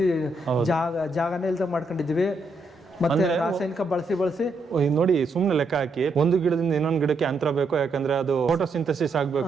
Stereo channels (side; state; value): left; quieter; 3.1 dB